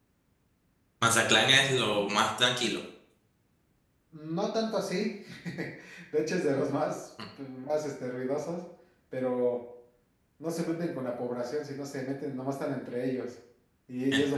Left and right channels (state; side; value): identical; both; correlation 1.00